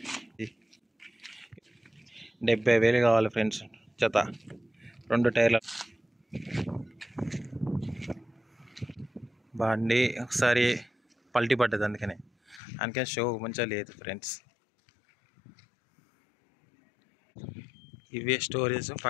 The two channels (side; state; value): right; drops out; at 12.6 s